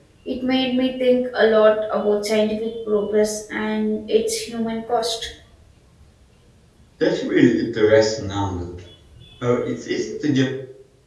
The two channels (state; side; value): identical; both; correlation 1.00